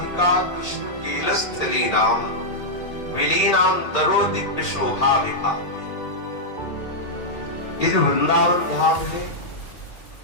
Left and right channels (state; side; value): late; right; 2.2 ms